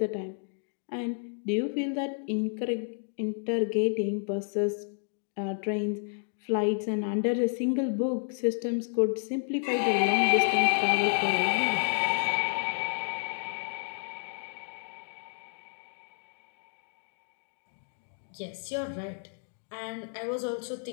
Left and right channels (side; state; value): right; silent; 57 dB below the other